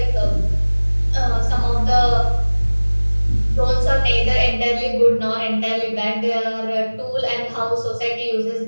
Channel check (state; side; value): inverted; both; correlation -1.00